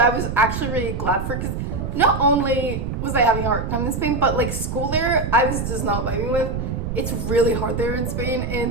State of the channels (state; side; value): noise; right; rumble, 4 dB below the sound